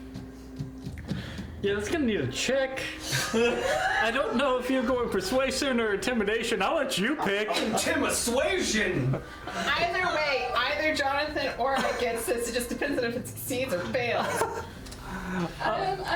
Yeah, that's gonna need a check. I don't know if you're going persuasion or intimidation. I'll let you pick. Intimidation! Either way, either Jonathan or I gets this. It just depends on if it succeeds or fails.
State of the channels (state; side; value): identical; both; correlation 1.00